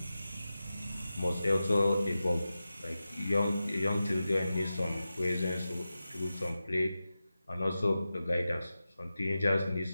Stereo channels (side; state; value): both; inverted; correlation -0.93